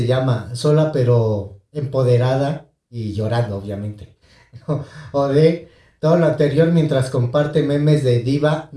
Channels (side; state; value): both; identical; correlation 1.00